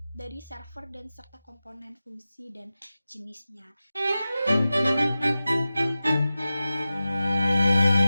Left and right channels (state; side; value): inverted; both; correlation -0.94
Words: dari server dan serta komponen fungsi dan jenisnya.